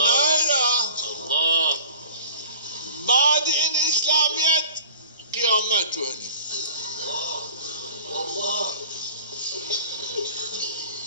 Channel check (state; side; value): inverted; both; correlation -0.45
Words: الله بعد این اسلامیت قیامت ونی